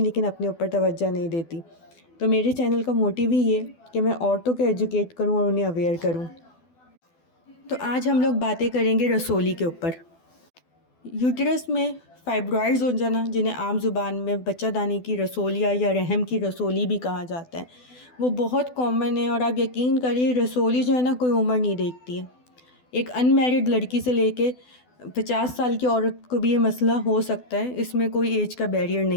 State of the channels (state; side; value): late; right; 12 ms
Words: लेकिन अपने ऊपर तवज्जो नहीं देती। तो मेरे चैनल का मोटिव ही ये कि मैं औरतों को एजुकेट करूं और उन्हें अवेयर करूं। तो आज हम लोग बातें करेंगे रसोली के ऊपर। यूटरस में फाइब्रॉइड्स हो जाना, जिन्हें आम ज़ुबान में बच्चादानी की रसोलिया या रहम की रसोली भी कहा जाता है, वो बहुत कॉमन है। और आप यकीन करिए, रसोली जो है ना, कोई उम्र नहीं देखती है। एक अनमैरिड लड़की से लेके 50 साल की औरत को भी ये मसला हो सकता है, इसमें कोई एज का बैरियर